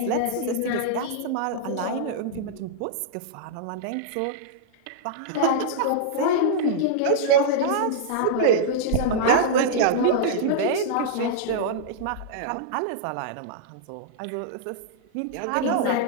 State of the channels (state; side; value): different; both; correlation -0.02